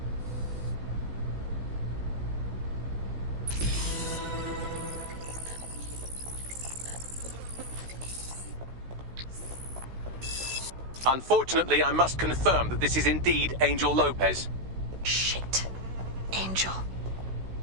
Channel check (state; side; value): late; left; 16 ms